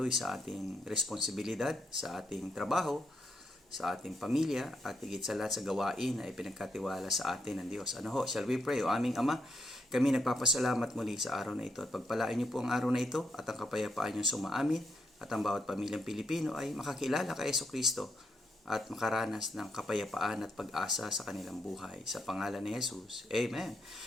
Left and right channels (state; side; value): normal; both; correlation 0.79